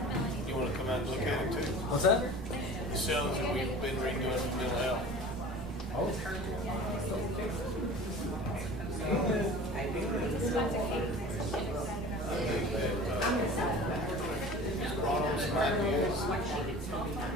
You wanna come out and look at it too? What's that? The cells that we've been redoing for mental health. I think that, brought on some ideas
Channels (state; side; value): normal; both; correlation 0.40